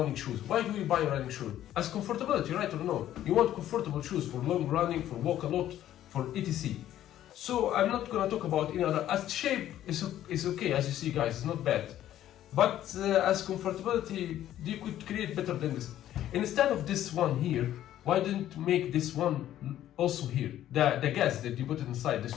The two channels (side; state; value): right; quieter; 12.3 dB